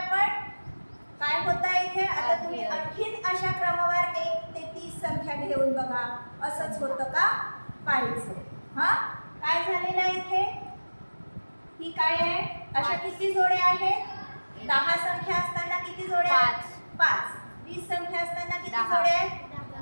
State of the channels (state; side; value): inverted; both; correlation -1.00